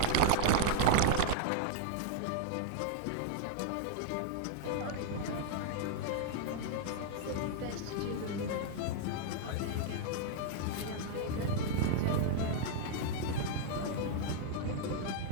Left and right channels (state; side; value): different; both; correlation -0.01